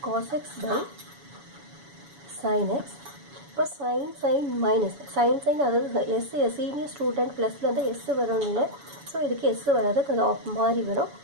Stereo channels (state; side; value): late; left; 7.1 ms